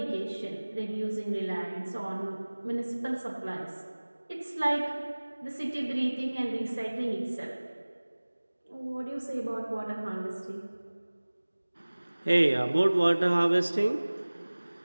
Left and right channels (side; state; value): both; inverted; correlation -1.00